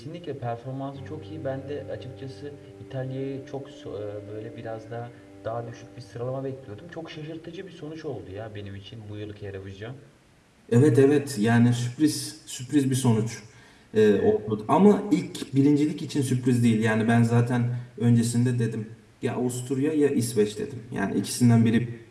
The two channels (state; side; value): identical; both; correlation 1.00